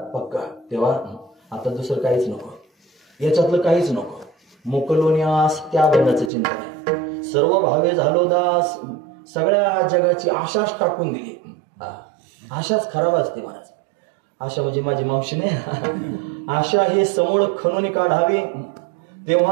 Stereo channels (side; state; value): left; drops out; at 6.3 s